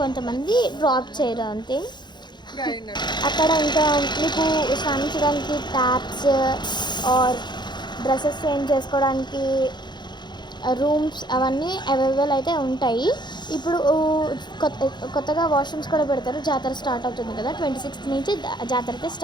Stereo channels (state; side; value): late; right; 0.21 ms